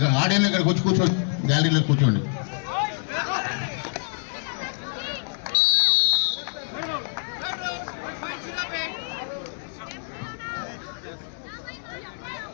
ఆడియన్స్ ఇక్కడ కూర్చోండి, గ్యాలరీలో కూర్చోండి.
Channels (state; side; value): silent; right; digital silence